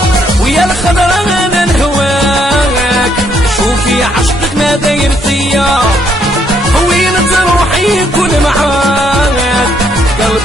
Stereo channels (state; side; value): normal; both; correlation 0.71